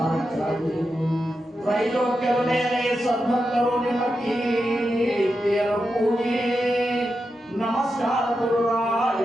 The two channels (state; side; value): normal; both; correlation 0.88